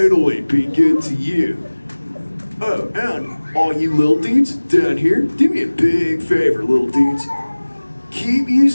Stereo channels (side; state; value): both; inverted; correlation -1.00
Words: be good to you. Oh, and all you little dudes down here, do me a big favor, little dudes. Keep